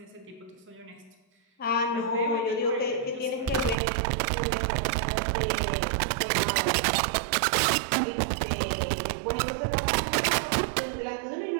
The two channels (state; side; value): drops out; left; at 3.8 s